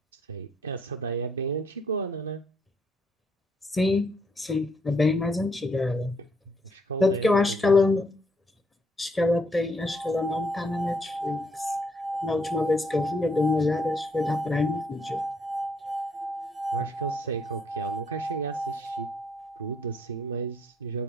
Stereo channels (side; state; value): both; normal; correlation 0.71